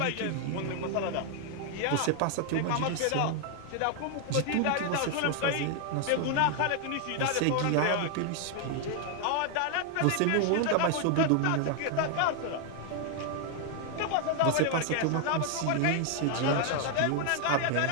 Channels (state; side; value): different; both; correlation 0.00